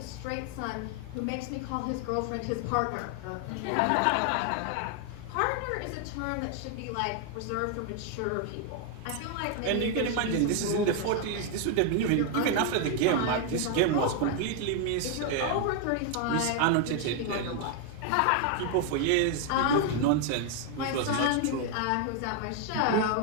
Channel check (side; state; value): both; different; correlation 0.01